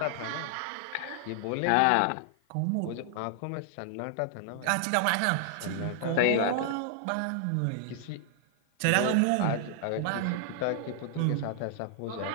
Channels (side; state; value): both; different; correlation -0.01